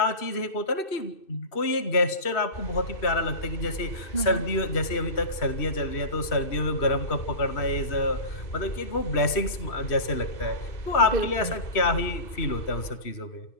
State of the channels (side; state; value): right; late; 2.6 ms